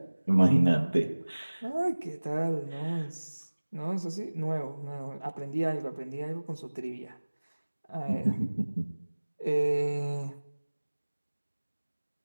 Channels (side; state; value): both; inverted; correlation -1.00